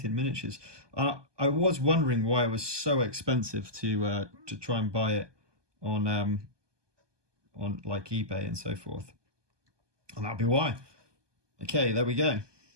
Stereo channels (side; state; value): left; late; 1.2 ms